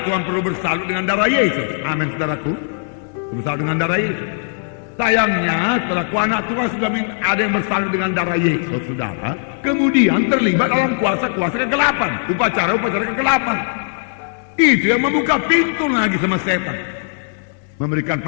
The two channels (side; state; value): right; silent; 67 dB below the other